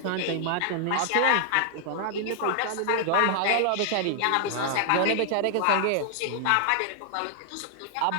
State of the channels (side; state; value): both; different; correlation -0.01